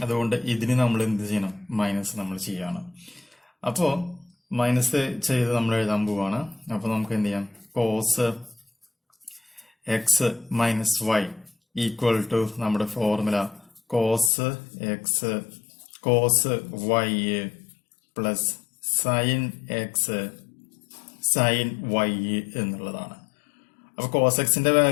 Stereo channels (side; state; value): right; drops out; at 14.3 s